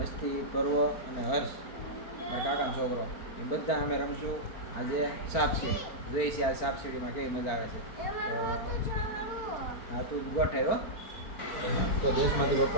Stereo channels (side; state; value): right; late; 4.4 ms